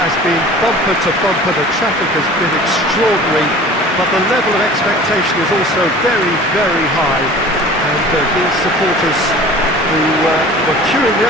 has been bumper to bumper, the traffic has been extraordinary, but the level of expectation is also very, very high. And these supporters who were queuing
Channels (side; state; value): both; normal; correlation 0.43